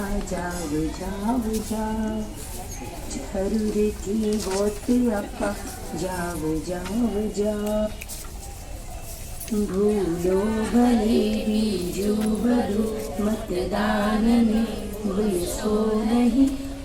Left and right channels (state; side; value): identical; both; correlation 1.00